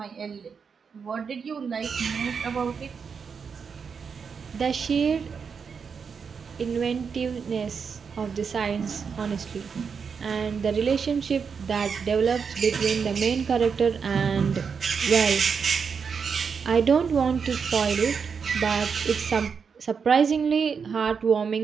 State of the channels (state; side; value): quieter; left; 6.1 dB